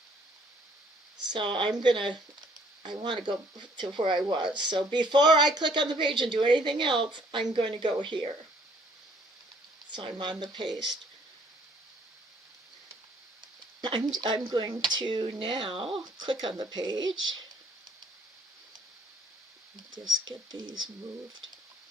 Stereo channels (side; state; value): both; normal; correlation 0.61